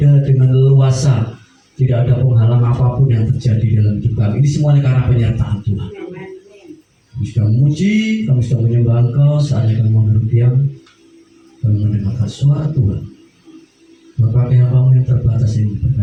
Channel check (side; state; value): both; identical; correlation 1.00